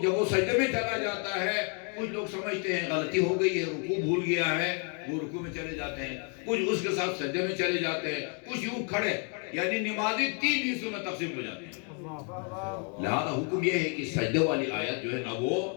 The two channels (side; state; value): right; quieter; 39.7 dB